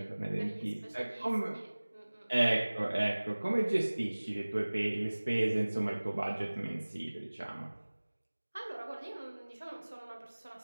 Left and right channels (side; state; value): both; inverted; correlation -1.00